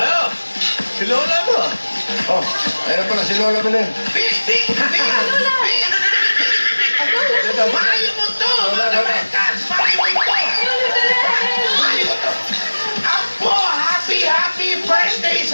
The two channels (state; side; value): inverted; both; correlation -1.00